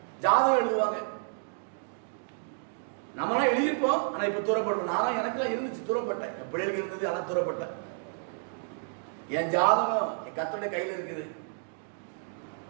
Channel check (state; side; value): silent; left; 56 dB below the other